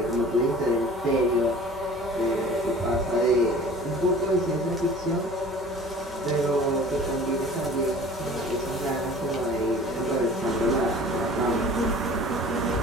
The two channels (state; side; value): normal; both; correlation 0.45